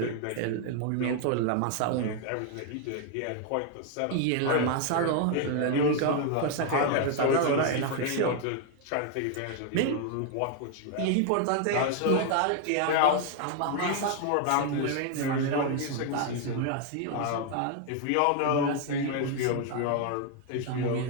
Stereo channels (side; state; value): both; different; correlation 0.00